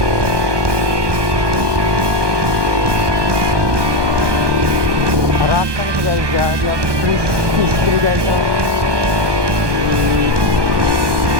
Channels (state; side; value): late; left; 1.2 ms